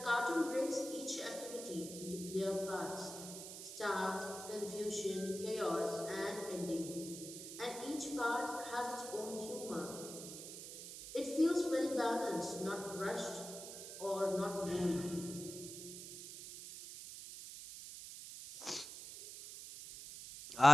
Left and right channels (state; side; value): noise; right; hiss, 10 dB below the sound